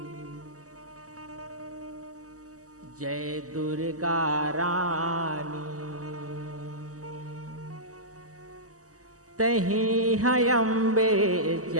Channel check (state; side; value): late; left; 0.66 ms